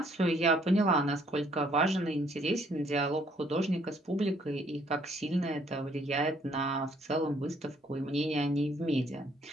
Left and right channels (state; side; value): normal; both; correlation 0.65